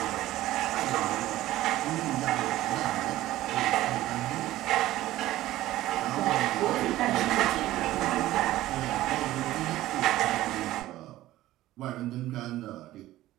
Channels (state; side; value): quieter; left; 15.5 dB